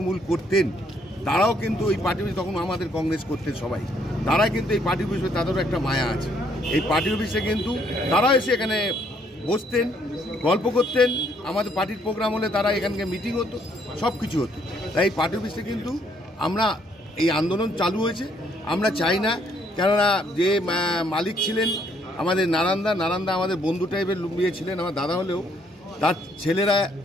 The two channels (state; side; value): normal; both; correlation 0.68